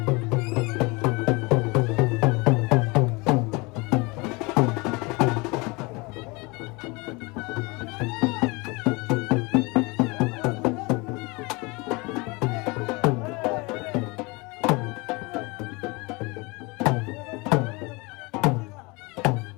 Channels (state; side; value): quieter; right; 26.2 dB